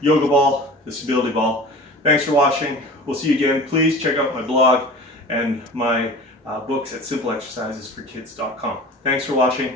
yoga ball, the stability ball. Thanks for watching. We'll see you again. Please check out my blog and my books at simpleexercisesforkids.com. Thanks for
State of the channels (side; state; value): both; normal; correlation 0.38